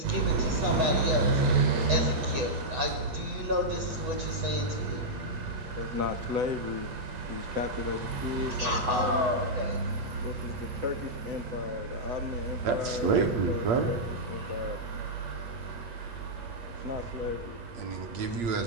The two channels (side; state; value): left; late; 8.1 ms